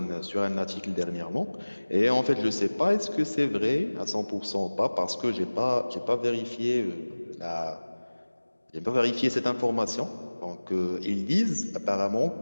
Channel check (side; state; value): both; inverted; correlation -1.00